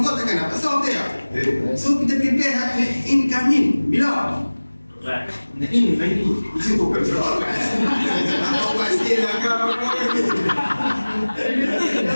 takkan dapat solve dia. So kita prepare incoming. Bila? Ini. Itu bukan soal. Apa pasti lah kau.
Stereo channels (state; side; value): inverted; both; correlation -1.00